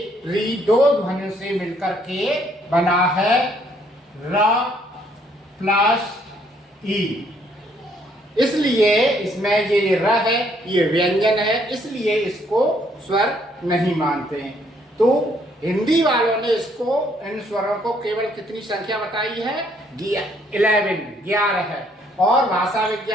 री 2 ध्वनियों से मिलकर के बना है, र प्लस ई। इसलिए इसमें ये र है, ये व्यंजन है, इसलिए इसको स्वर नहीं मानते हैं। तो हिंदी वालों ने इसको इन स्वरों को केवल कितनी संख्या बताई है? 11 है, और भाषा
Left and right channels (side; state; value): both; normal; correlation 0.67